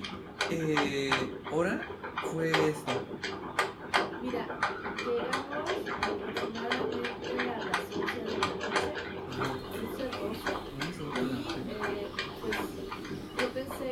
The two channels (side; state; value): both; identical; correlation 1.00